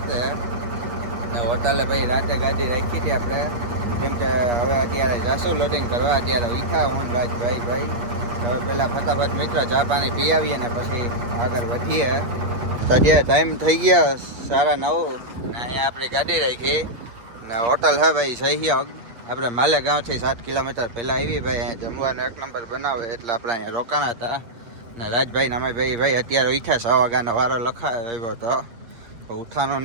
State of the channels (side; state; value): left; late; 8.6 ms